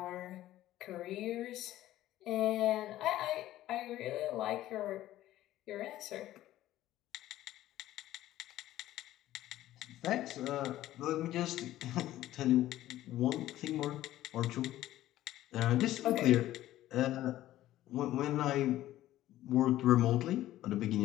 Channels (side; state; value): right; quieter; 14.3 dB